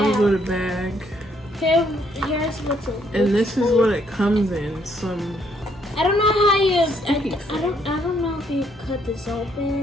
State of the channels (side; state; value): both; normal; correlation 0.70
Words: out. with a bag. Here's what's in. And this is what it comes in. Some. I don't know how you. I don't know if you cut this